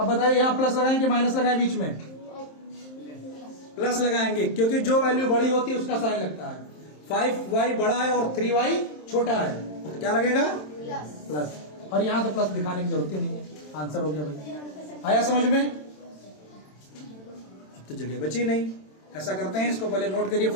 बताइए यहाँ प्लस लगाएं कि माइनस लगाएं? बीच में प्लस लगाएंगे, क्योंकि जो वैल्यू बड़ी होती है उसका साइन लगता है। 5y बड़ा है और 3y छोटा है, तो क्या लगेगा? प्लस। और यहाँ तो प्लस दिखाने की जरूरत ही नहीं है, आंसर हो गया भाई। आया समझ में? अब तो जगह बची नहीं। ऐसा करते हैं, इसको पहले नोट करिए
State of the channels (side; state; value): right; late; 27 ms